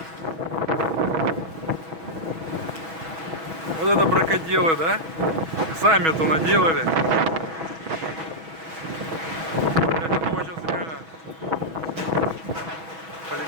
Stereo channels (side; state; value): left; late; 6.2 ms